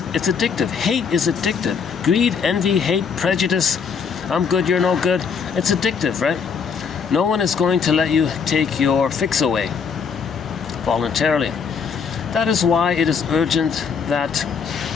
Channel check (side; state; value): right; quieter; 6.1 dB